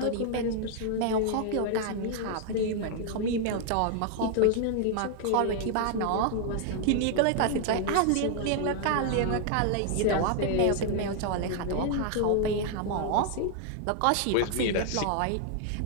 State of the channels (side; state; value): both; different; correlation 0.00